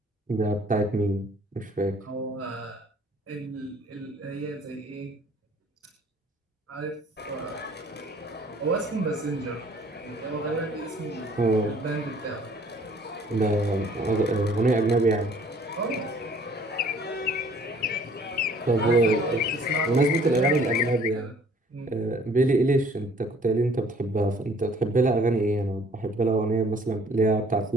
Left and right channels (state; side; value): normal; both; correlation 0.56